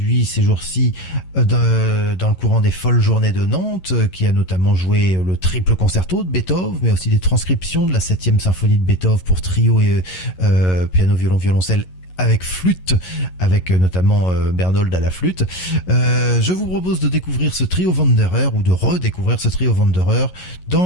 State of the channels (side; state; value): right; late; 11 ms